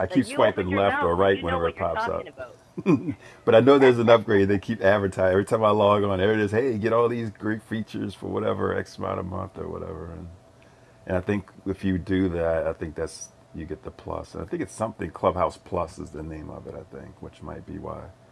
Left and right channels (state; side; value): identical; both; correlation 1.00